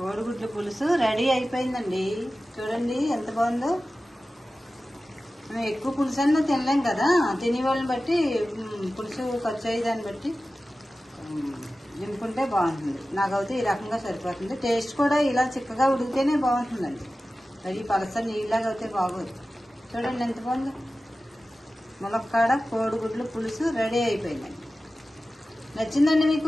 పులుసు రెడీ అయిపోయిందండి. చూడండి ఎంత బాగుందో. మేము ఎక్కువ పులుసు అన్నా తినలేం కదా, తినేవాళ్ళని బట్టి పులుసు ఖర్చు అయ్యేదాన్ని బట్టి నింపుకుంటే బాగుంటుంది. నాకైతే ఈ రకంగా సరిపోతుంది. టేస్ట్ కూడా ఇలా చిక్కగా ఉడికితేనే బాగుంటుందండి. అది పలస నీళ్ళలాగా అయితే బాగోదు. చూడండి ఎంత బాగుందో. ములక్కాడ కోడిగుడ్లు పులుసు రెడీ అయిపోయిందండి. నచ్చిందండి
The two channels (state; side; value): normal; both; correlation 0.95